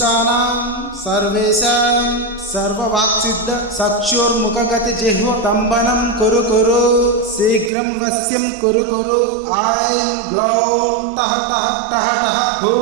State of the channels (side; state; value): left; drops out; at 7.7 s